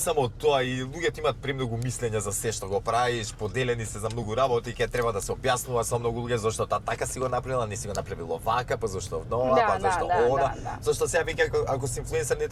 тоа, и луѓето имаат премногу мислења за се што го правиш, поделени се за многу работи, ќе треба да се објаснува со многу луѓе зашто таа така си го направила, не си го направила вака, па зашто нова, па зашто она. Зашто сега вика ако си инфлуенсер не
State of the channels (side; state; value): both; identical; correlation 1.00